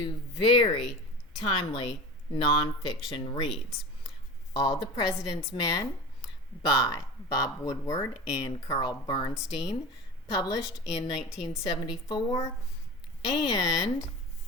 very timely nonfiction reads. All the President's Men by Bob Woodward and Bernstein, published in 1974, and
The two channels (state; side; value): normal; both; correlation 0.32